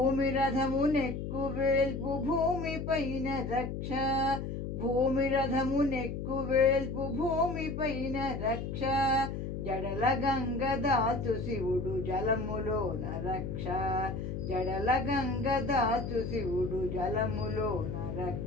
రథమునెక్కు వేల్పు భూమి పైన రక్ష భూమి రథమునెక్కు వేల్పు భూమి పైన రక్ష జడల గంగ దాచు శివుడు జలములోన రక్ష జడల గంగ దాచు శివుడు జలములోన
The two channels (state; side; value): noise; left; hum, 5 dB below the sound